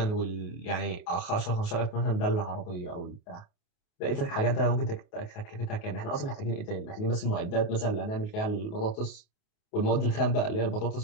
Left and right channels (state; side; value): late; right; 28 ms